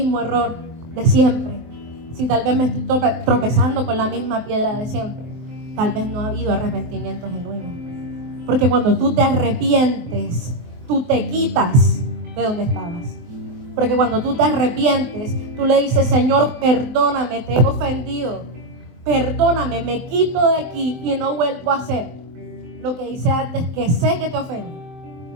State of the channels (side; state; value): left; late; 23 ms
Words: error de siempre, si tal vez me estoy tropezando con la misma piedra de siempre, tal vez no ha habido arrepentimiento genuino. Porque cuando tú te arrepientes, tú te quitas de donde estabas. Porque cuando tú te arrepientes, tú le dices, Señor, perdóname, te he ofendido. Perdóname, me quito de aquí y no vuelvo a hacer lo que hice antes, que sé que te ofendo.